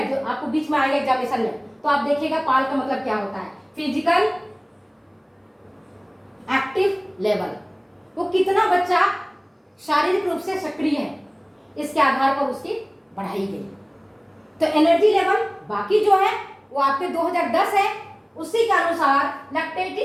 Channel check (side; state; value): both; identical; correlation 1.00